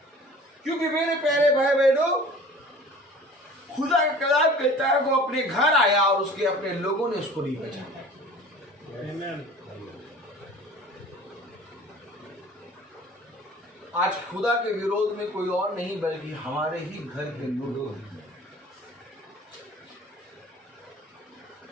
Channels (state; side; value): normal; both; correlation 0.45